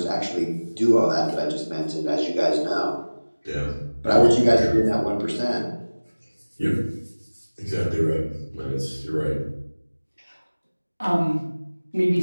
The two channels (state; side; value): inverted; both; correlation -1.00